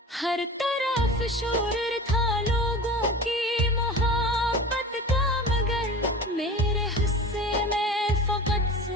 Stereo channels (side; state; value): both; normal; correlation 0.35